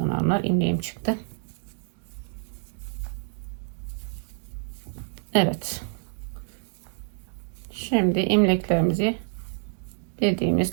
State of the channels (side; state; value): left; silent; digital silence